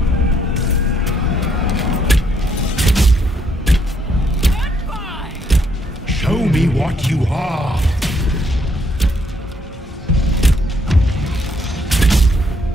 Show me what you are.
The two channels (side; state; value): both; normal; correlation 0.71